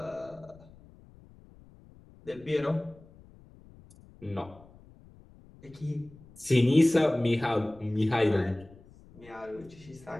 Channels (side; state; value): left; noise; rumble, 24 dB below the sound